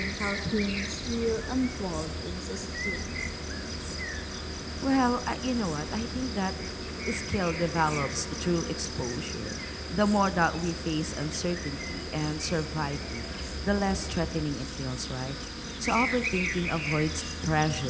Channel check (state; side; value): identical; both; correlation 1.00